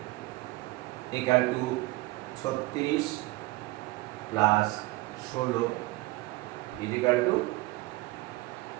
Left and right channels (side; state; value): left; quieter; 20.4 dB